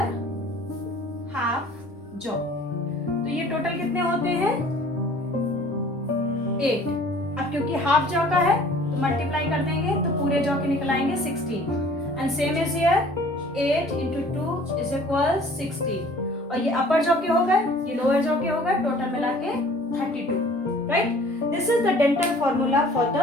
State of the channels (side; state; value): both; normal; correlation 0.51